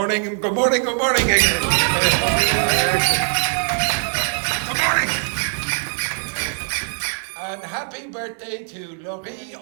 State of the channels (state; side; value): silent; left; digital silence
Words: good morning, good morning again. Good morning. And happy birthday to Laurie,